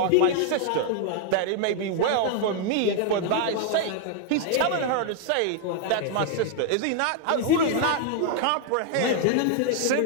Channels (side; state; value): both; different; correlation 0.00